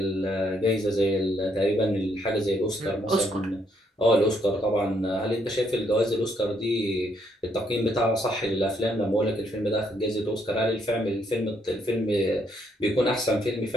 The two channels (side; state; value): both; normal; correlation 0.72